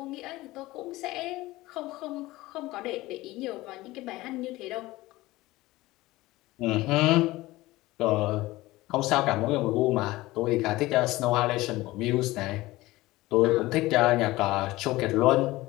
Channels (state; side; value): quieter; right; 18.8 dB